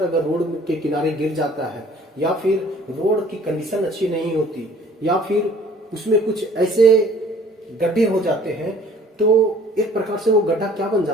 अगर रोड के किनारे गिर जाता है, या फिर रोड की कंडीशन अच्छी नहीं होती, या फिर उसमें कुछ ऐसे गड्ढे हो जाते हैं, तो एक प्रकार से वो गड्ढा क्या बन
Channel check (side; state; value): both; normal; correlation 0.53